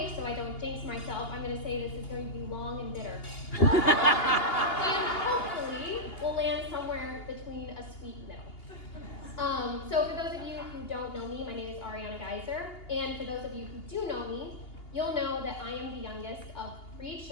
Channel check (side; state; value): right; late; 2.8 ms